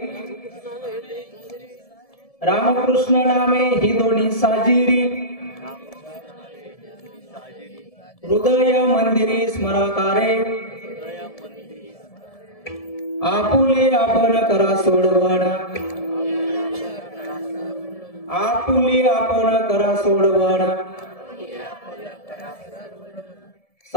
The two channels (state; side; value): late; right; 1.7 ms